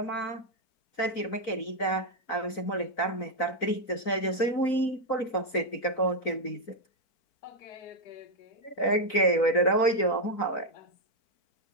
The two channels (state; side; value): late; right; 3.9 ms